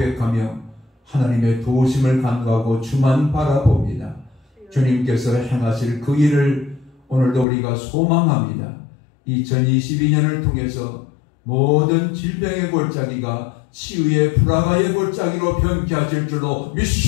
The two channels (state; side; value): drops out; right; at 7.5 s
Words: 하나님의 도우심을 간구하고 주만 바라봅니다. 주님께서 행하실 그 일을 오늘도 우리가 소망합니다. 2022년을 통해서 모든 질병의 골짜기가 치유의 불화가의 골짜기로 변케하실 줄로